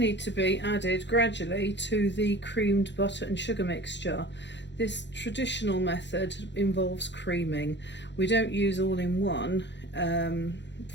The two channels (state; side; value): late; right; 0.52 ms